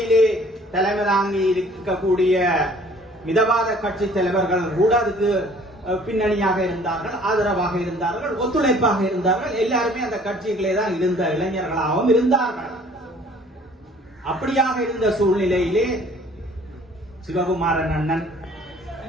தலைமை தாங்கி இருக்கக்கூடிய மிதவாத கட்சி தலைவர்கள் கூட அதுக்கு பின்னணியாக இருந்தார்கள், ஆதரவாக இருந்தார்கள், ஒத்துழைப்பாக இருந்தார்கள். எல்லாருமே அந்த கட்சிகளே தான் இருந்த இளைஞர்களாகவும் இருந்தார்கள். அப்படியாக இருந்த சூழ்நிலையிலே சிவகுமாரன் அண்ணன்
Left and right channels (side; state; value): both; normal; correlation 0.54